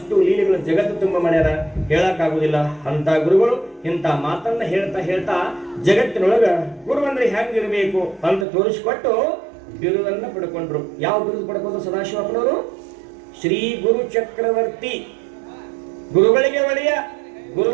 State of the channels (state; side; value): drops out; left; at 8.5 s